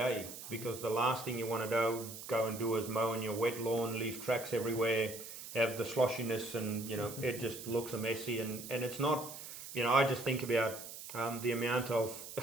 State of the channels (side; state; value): right; noise; hiss, 11 dB below the sound